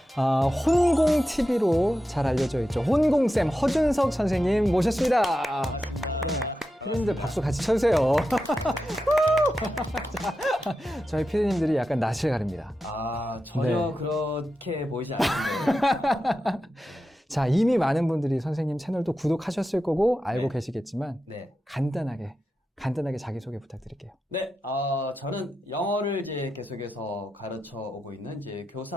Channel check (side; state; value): both; normal; correlation 0.90